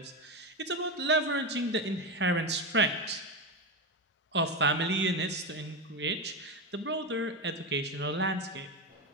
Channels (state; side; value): normal; both; correlation 0.14